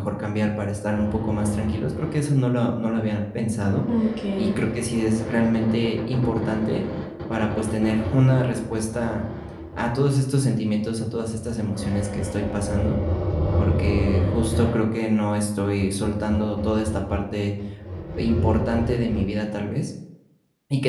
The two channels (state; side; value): identical; both; correlation 1.00